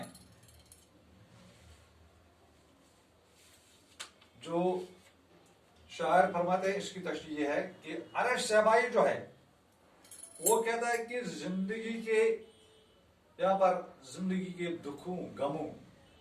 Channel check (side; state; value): both; identical; correlation 1.00